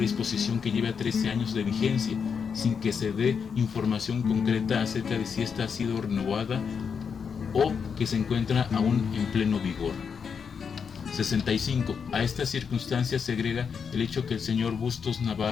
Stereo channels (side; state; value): right; quieter; 6.4 dB